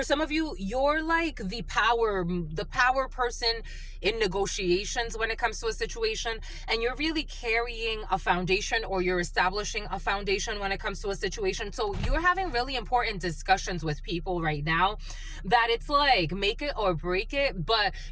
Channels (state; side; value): identical; both; correlation 1.00